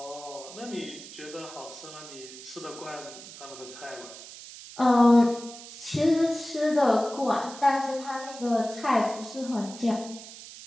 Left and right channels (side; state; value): right; noise; hiss, 15 dB below the sound